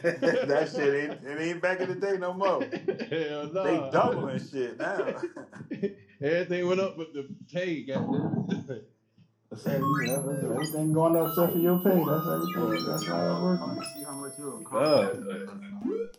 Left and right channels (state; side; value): identical; both; correlation 1.00